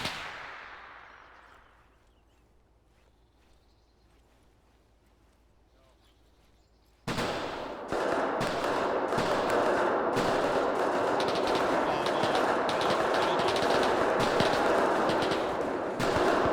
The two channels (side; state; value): both; identical; correlation 1.00